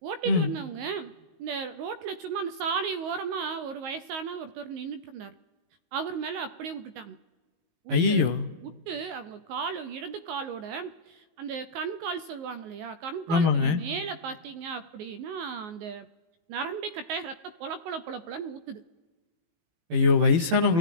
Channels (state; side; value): late; left; 19 ms